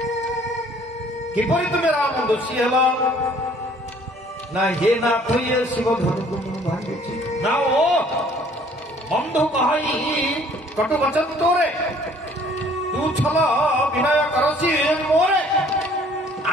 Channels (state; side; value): normal; both; correlation 0.57